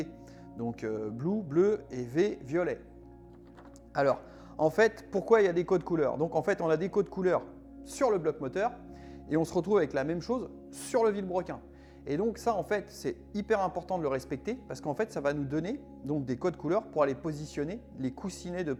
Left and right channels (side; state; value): both; identical; correlation 1.00